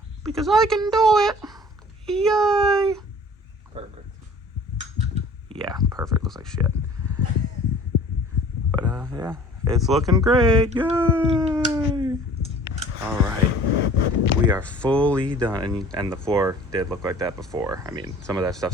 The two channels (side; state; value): both; normal; correlation 0.48